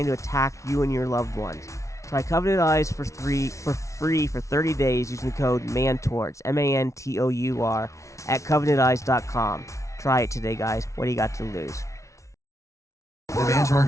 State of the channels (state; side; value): late; right; 0.14 ms